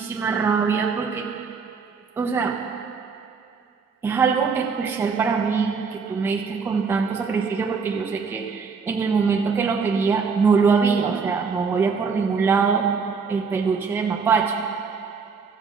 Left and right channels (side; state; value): left; quieter; 5.3 dB